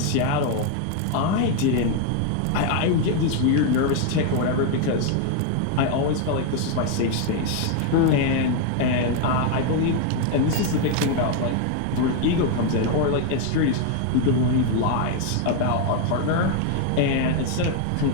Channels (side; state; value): both; different; correlation 0.01